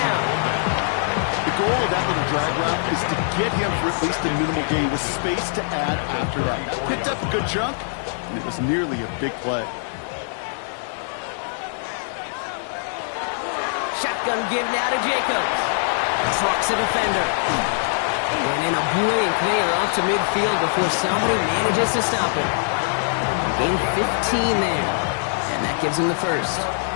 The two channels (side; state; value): right; silent; 64 dB below the other